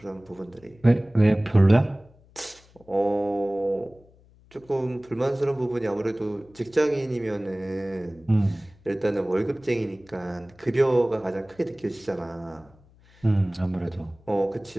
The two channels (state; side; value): noise; left; hum, 28 dB below the sound